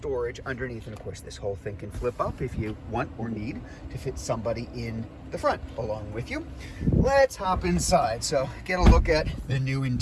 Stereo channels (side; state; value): both; identical; correlation 1.00